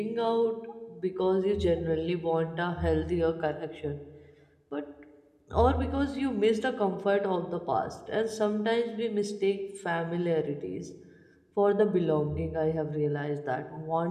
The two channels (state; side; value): identical; both; correlation 1.00